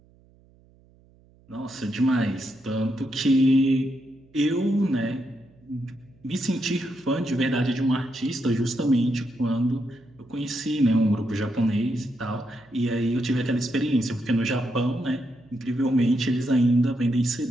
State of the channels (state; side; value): noise; right; hum, 30 dB below the sound